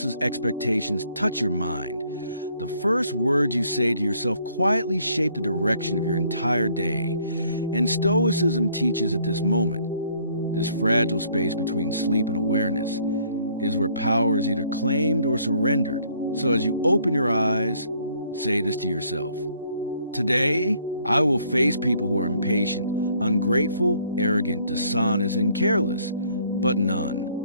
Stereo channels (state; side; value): inverted; both; correlation -0.64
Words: expectations touch your mind, the first words you say to yourself quietly shape the direction of your entire day. And Stoicism teaches at this moment, this fragile space between sleep and awareness, is where power is either claimed or surrendered. So as you open your eyes, say this to yourself. Today, I will face people who are impatient, ungrateful, arrogant, dishonest, and careless, but none